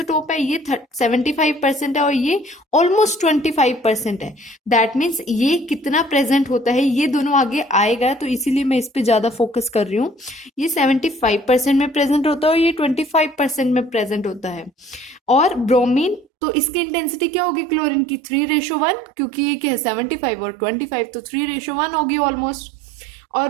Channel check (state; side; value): drops out; left; at 16.2 s